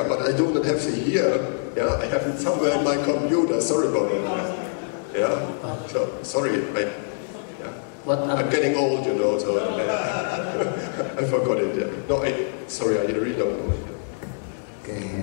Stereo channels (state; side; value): silent; right; digital silence